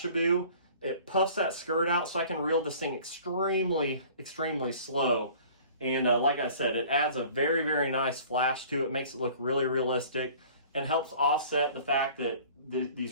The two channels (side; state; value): both; inverted; correlation -0.48